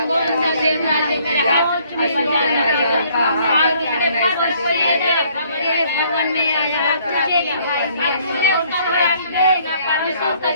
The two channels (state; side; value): inverted; both; correlation -0.62